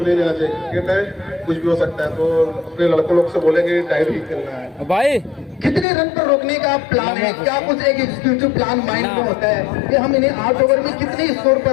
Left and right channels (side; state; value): right; drops out; at 5.9 s